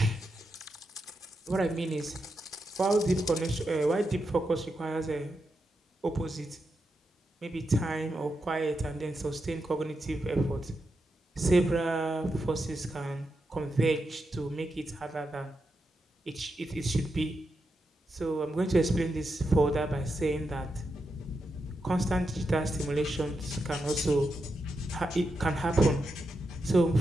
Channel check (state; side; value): normal; both; correlation 0.86